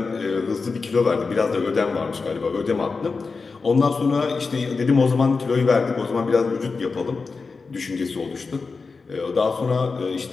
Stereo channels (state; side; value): quieter; right; 4.4 dB